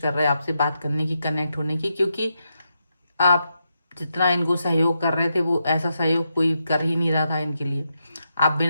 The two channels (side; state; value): both; inverted; correlation -0.83